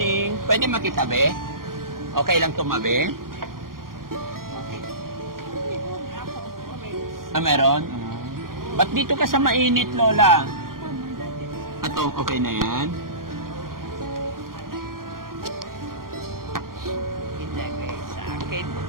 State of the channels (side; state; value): left; late; 0.91 ms